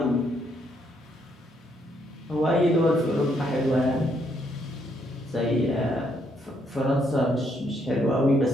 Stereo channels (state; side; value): normal; both; correlation 0.73